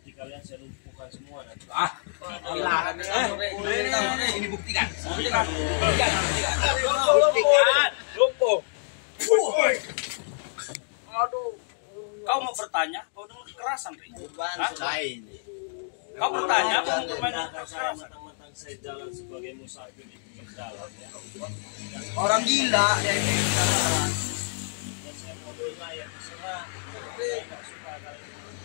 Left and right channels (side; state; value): right; silent; digital silence